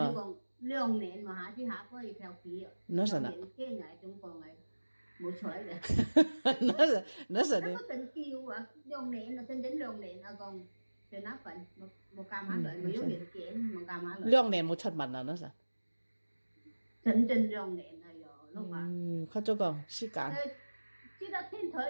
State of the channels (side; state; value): both; inverted; correlation -1.00